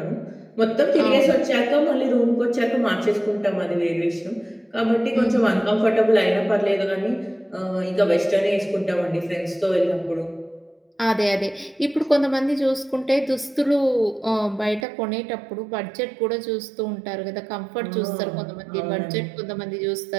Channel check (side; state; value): left; drops out; at 14.9 s